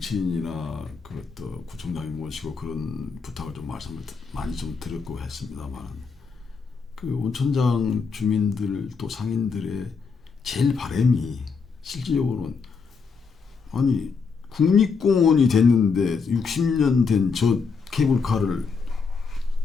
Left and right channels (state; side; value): quieter; right; 5.2 dB